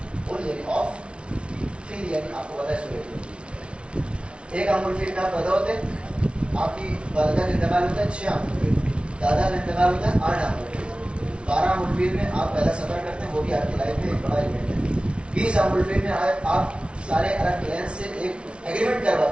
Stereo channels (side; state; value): left; late; 0.059 ms